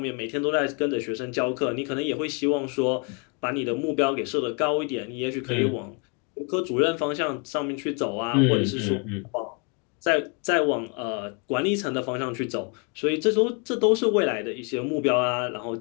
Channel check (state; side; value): quieter; right; 35.3 dB